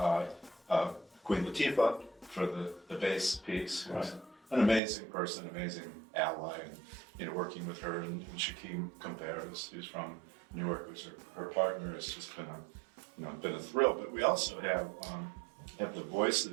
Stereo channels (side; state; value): left; drops out; at 4.8 s